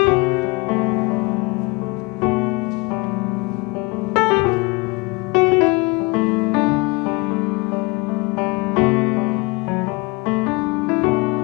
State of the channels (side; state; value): right; quieter; 26.6 dB